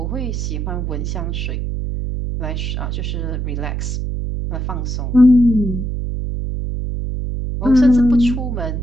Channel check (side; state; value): right; noise; hum, 3 dB below the sound